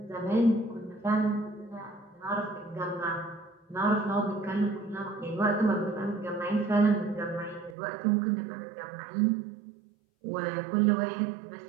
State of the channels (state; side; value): drops out; left; at 7.8 s